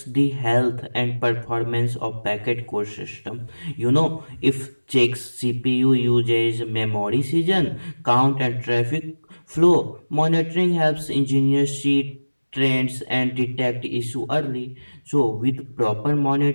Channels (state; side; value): inverted; both; correlation -1.00